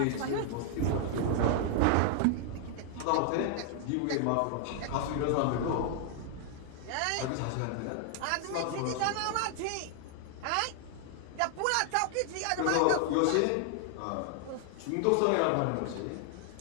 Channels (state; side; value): different; both; correlation 0.00